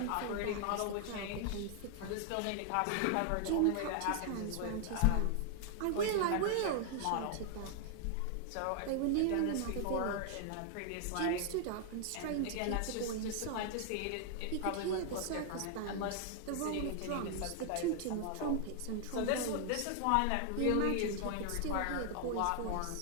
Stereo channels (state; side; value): different; both; correlation 0.00